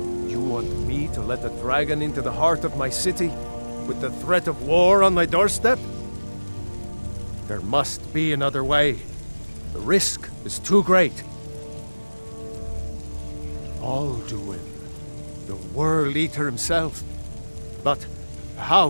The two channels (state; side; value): inverted; both; correlation -1.00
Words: You want me to let a dragon into the heart of my city, with the threat of war on my doorstep? There must be another way. The risk is too great. Alduin, the World Eater himself. But how